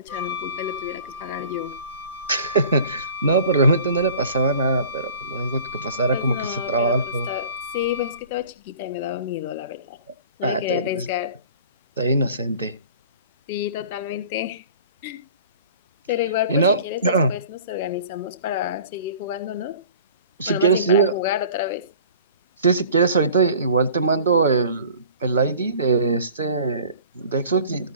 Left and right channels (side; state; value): both; inverted; correlation -0.46